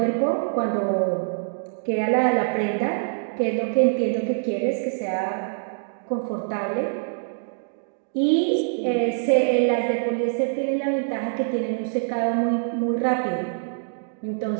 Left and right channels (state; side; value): silent; left; digital silence